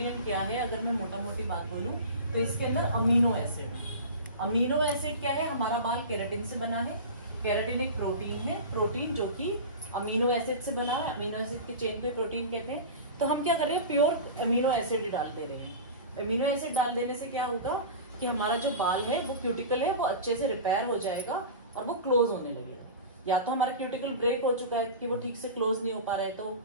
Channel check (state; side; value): inverted; both; correlation -0.31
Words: क्या है, अगर मैं मोटा मोटी बात बोलूं तो इसके अंदर अमीनो एसिड। अमीनो एसिड क्या है, हमारा बाल केराटिन से बना है, केराटिन एक प्रोटीन है, प्रोटीन जो कि अमीनो एसिड से बना है, अमीनो एसिड की चेन पे प्रोटीन कहते हैं। तो हम क्या कर रहे हैं, प्योर अमीनो एसिड डाल दे रहे हैं। अमीनो एसिड डाल देने से क्या होगा कि हमारा जो बाल है वो क्यूटिकल है वो अच्छे से रिपेयर हो जाएगा और वो क्लोज होने लगेगा। या तो हमारा क्यूटिकल ब्रेक हो चुका है कि वो ठीक से क्लोज नहीं हो पा रहा है तो वो